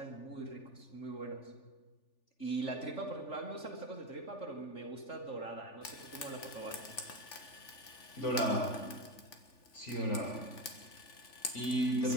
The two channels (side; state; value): right; late; 3.4 ms